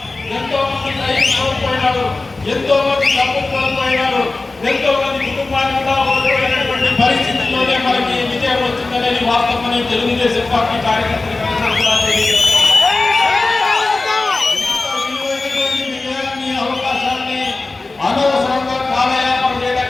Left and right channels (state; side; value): quieter; right; 3.4 dB